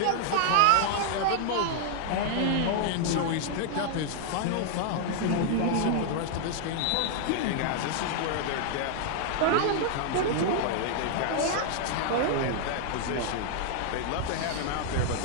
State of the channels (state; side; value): different; both; correlation 0.00